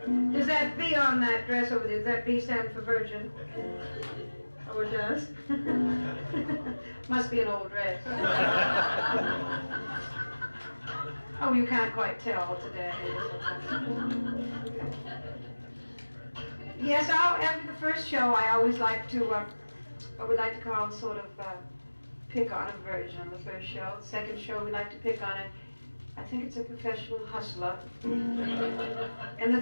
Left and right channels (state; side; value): inverted; both; correlation -1.00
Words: Does that V on that dress over there, does that V stand for virgin? Oh, it does? Must be an old dress. Oh, you can't quite tell today. Yes, after the first show, I always like to, what we like to call sort of pick on a virgin on the first show. The second show, we like to pick on I think it's a professional hustler. And the